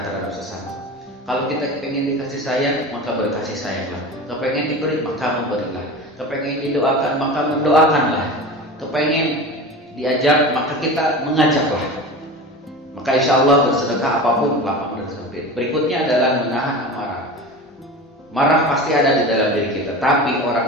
terhadap sesama. Kalau kita pengen dikasih sayang, maka berkasih sayanglah. Kepengen diberi, maka memberilah. Kepengen didoakan, maka mendoakanlah. Kepengen diajak, maka kita mengajaklah. Maka insya Allah bersedekah apapun lapang dan sempit. Berikutnya adalah menahan amarah. Marah pasti ada di dalam diri kita, tapi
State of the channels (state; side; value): normal; both; correlation 0.32